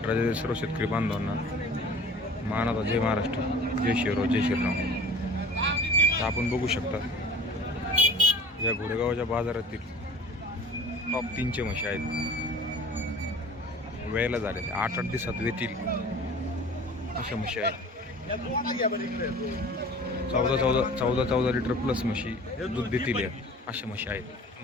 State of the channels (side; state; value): both; normal; correlation 0.44